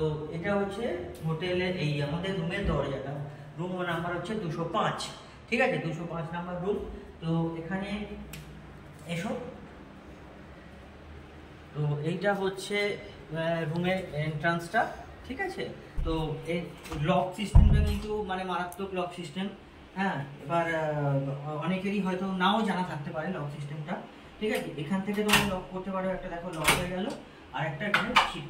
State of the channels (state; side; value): identical; both; correlation 1.00